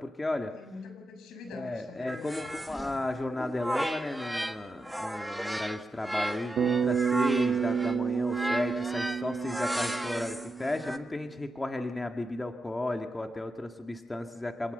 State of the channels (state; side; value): normal; both; correlation 0.88